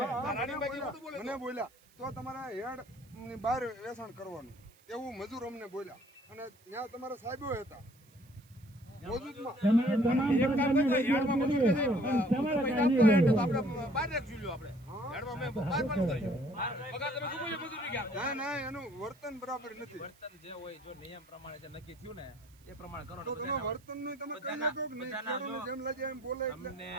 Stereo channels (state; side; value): noise; right; hiss, 29 dB below the sound